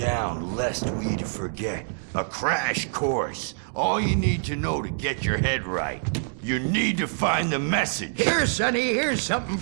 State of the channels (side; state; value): left; silent; 61 dB below the other